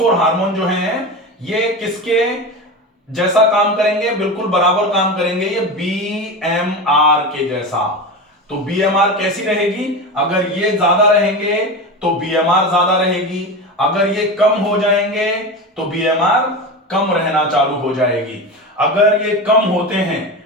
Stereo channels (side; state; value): both; normal; correlation 0.24